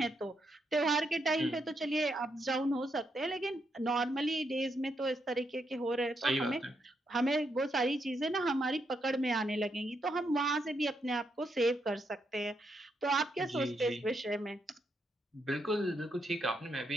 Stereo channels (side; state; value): both; normal; correlation 0.80